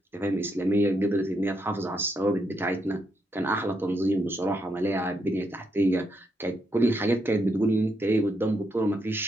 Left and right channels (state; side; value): normal; both; correlation 0.79